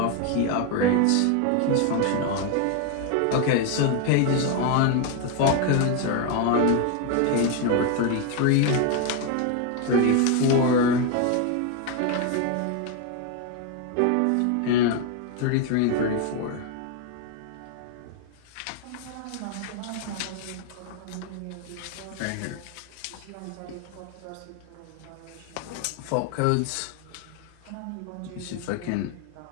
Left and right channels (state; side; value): different; both; correlation 0.01